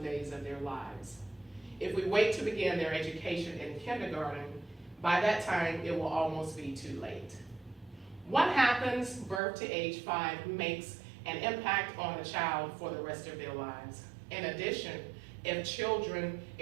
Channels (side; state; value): left; drops out; at 9.4 s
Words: days of their lives. If we wait to begin their education in kindergarten, by that time it will almost be too late. What happens birth to age 5 makes an impact on the child for the rest of their lives. In addition, if children